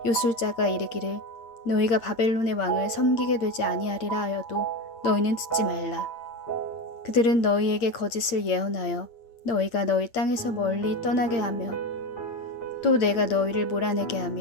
요술자가 이르기를 너희가 바벨론의 왕을 섬기게 되지 아니하리라 하여도 너희는 듣지 말라. 그들은 너희에게 거짓을 예언하여 너희가 너희 땅에서 멀리 떠나게 하며 또 내가 너희를 몰아내게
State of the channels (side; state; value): right; late; 8.7 ms